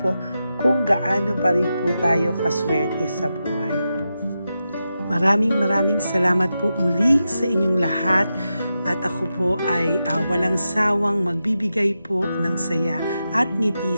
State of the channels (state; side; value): inverted; both; correlation -0.89